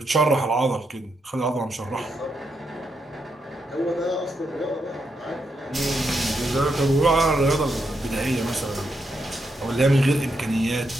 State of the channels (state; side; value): normal; both; correlation 0.81